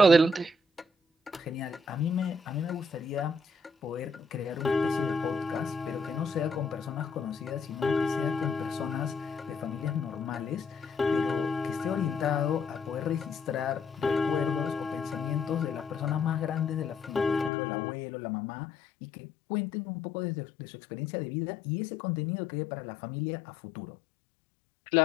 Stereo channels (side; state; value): right; drops out; at 17.5 s